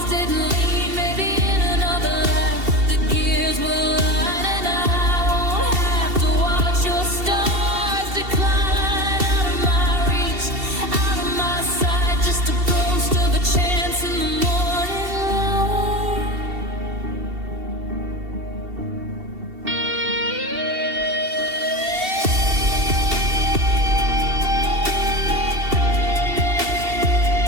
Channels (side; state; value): left; late; 2.7 ms